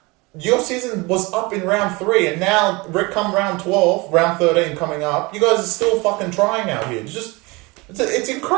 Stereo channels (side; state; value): left; quieter; 25.2 dB